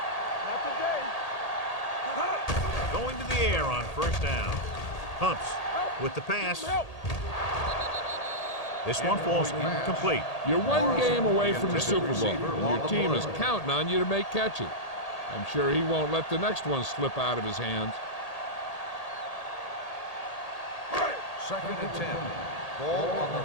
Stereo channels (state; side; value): late; right; 1.8 ms